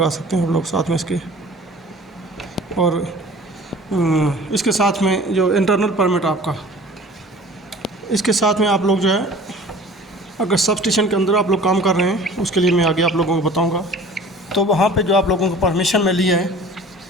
सकते हैं आप लोग साथ में इसके। और इसके साथ में जो इंटरनल परमिट आपका, इसके साथ में आप लोग जो है अगर सब स्टेशन के अंदर आप लोग काम कर रहे हैं, उसके लिए मैं आगे आप लोगों को बताऊंगा, तो वहाँ पे जो आप लोगों को परमिशन मिली है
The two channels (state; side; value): normal; both; correlation 0.45